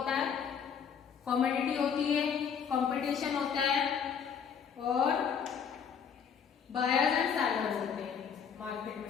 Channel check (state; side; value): quieter; right; 7.2 dB